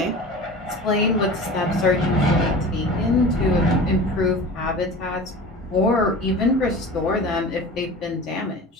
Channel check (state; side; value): normal; both; correlation 0.36